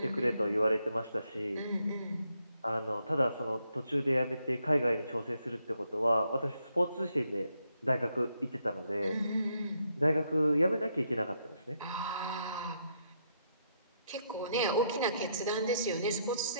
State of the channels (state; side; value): inverted; both; correlation -0.76